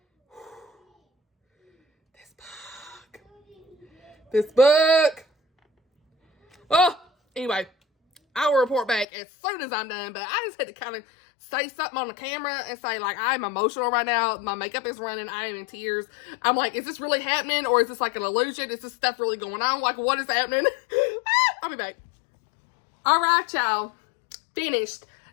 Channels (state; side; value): drops out; right; at 9.1 s